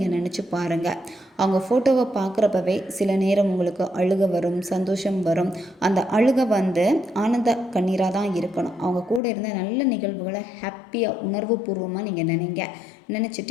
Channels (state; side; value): drops out; right; at 9.2 s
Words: நினச்சி பாருங்கள். அவங்க ஃபோட்டோவை பார்க்குறப்பவே சில நேரம் உங்களுக்கு அழுகை வரும், சந்தோஷம் வரும். அந்த அழுகை வந்து ஆனந்த கண்ணீராக தான் இருக்கணும். அவங்க கூட இருந்த நல்ல நிகழ்வுகளை ஹாப்பியாக உணர்வுபூர்வமாக நீங்கள்